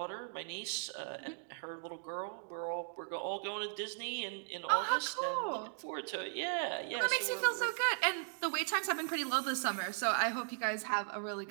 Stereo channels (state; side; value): silent; left; digital silence